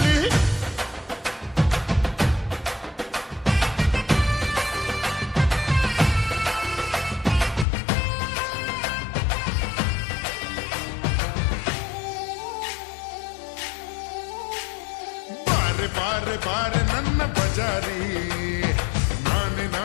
ಬಾರೆ ಬಾರೆ ನನ್ನ ಬಜಾರಿ ನಾನೆ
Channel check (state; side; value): drops out; right; at 7.7 s